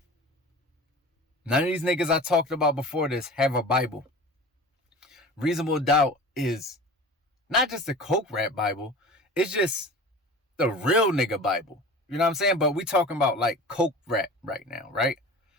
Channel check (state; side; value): normal; both; correlation 0.37